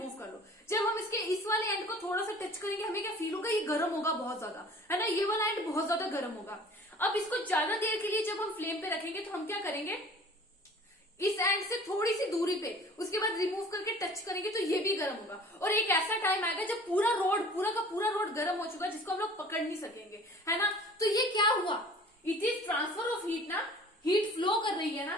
कर लो। जब हम इसके इस वाले एंड को थोड़ा सा टच करेंगे, हमें क्या फील होगा, ये गर्म होगा बहुत ज्यादा, है ना। ये वाला एंड बहुत ज्यादा गर्म होगा। अब इसको ज्यादा देर के लिए जब हम फ्लेम पे रखेंगे तो हम क्या करेंगे, इस एंड से थोड़ी सी दूरी पे, उसके बाद रिमूव करके टच करेंगे तो ये भी गर्म होगा। और एक ऐसा टाइम आएगा जब पूरा का पूरा रोड गर्म हो चुका है, जिसको हम लोग पकड़ नहीं सकेंगे, है ना। तो ये क्या हुआ, it is transfer of heat ना, हीट फ्लो कर रही है ना।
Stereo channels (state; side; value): normal; both; correlation 0.47